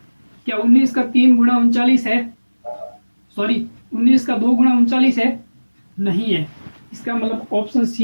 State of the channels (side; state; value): both; inverted; correlation -1.00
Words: क्या 19 का 3 गुना 39 है? सॉरी, 19 का 2 गुना 39 है? नहीं है। इसका मतलब ऑप्शन